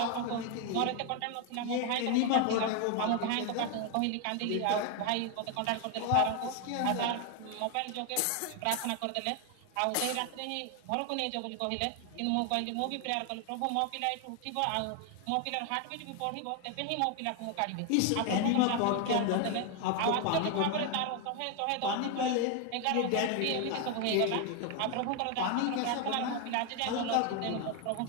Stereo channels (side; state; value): both; different; correlation 0.01